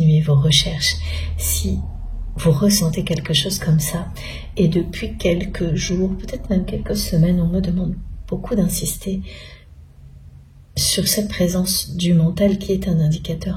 vos recherches si vous ressentez quelque chose comme ça. Et depuis quelques jours, peut-être même quelques semaines, on me demande beaucoup d'insister sur cette présence du mental qui est un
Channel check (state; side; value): identical; both; correlation 1.00